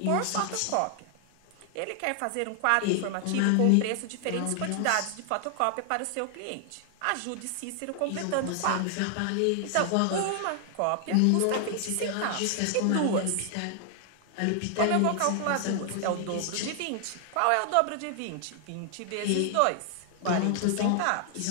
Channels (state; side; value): different; both; correlation 0.00